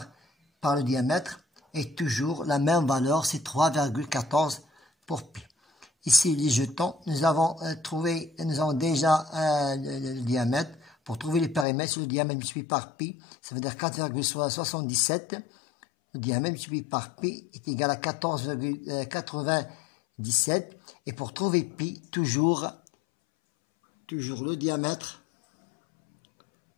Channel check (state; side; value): drops out; right; at 11.7 s